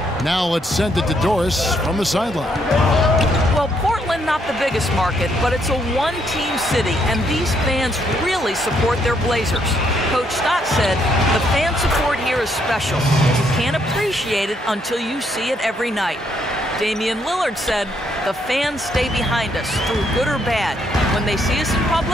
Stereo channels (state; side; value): normal; both; correlation 0.73